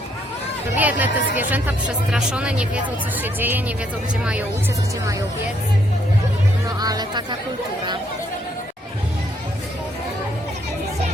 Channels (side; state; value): both; normal; correlation 0.71